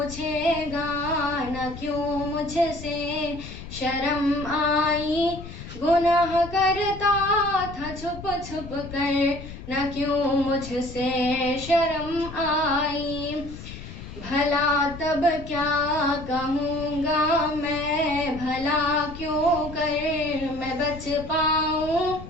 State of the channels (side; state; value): left; noise; rumble, 12 dB below the sound